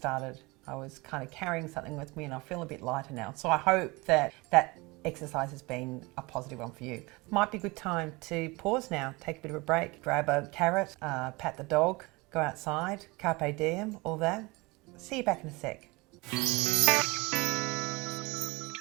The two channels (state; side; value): quieter; left; 24.4 dB